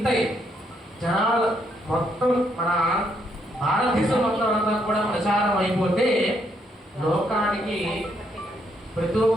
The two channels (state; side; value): normal; both; correlation 0.74